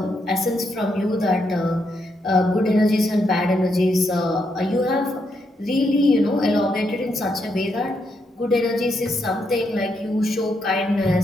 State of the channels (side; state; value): both; normal; correlation 0.79